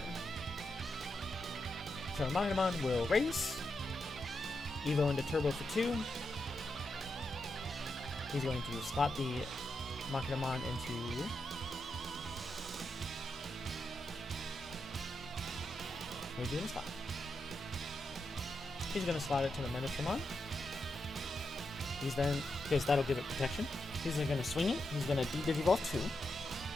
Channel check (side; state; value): both; normal; correlation 0.85